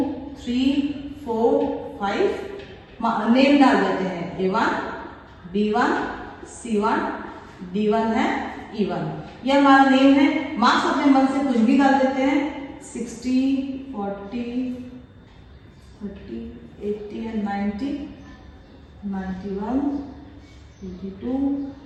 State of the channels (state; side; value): identical; both; correlation 1.00